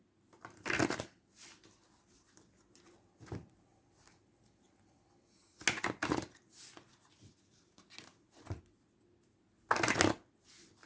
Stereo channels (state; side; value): identical; both; correlation 1.00